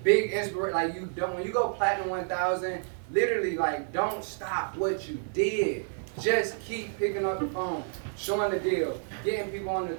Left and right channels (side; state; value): left; silent; 58 dB below the other